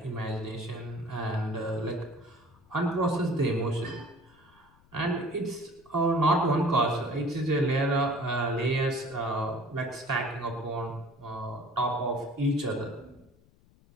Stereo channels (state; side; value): noise; left; rumble, 29 dB below the sound